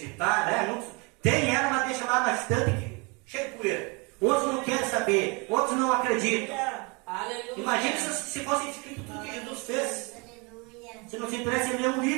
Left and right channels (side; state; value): left; quieter; 29.8 dB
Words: né? Tem ela, mas deixa lá na estante, cheio de poeira. Outros não querem saber, outros não acreditam. Aleluia. Imagina se fosse escrito tudo que Jesus fez. Aleluia. Se não se interessa em ler um